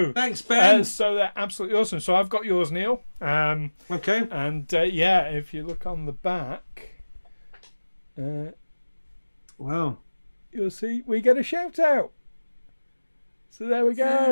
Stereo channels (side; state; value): both; inverted; correlation -1.00